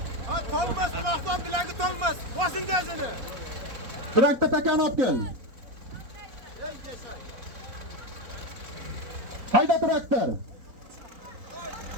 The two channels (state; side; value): late; left; 4.1 ms